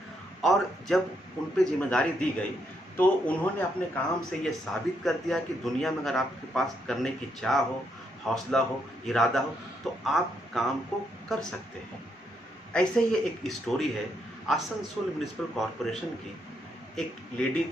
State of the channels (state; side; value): normal; both; correlation 0.76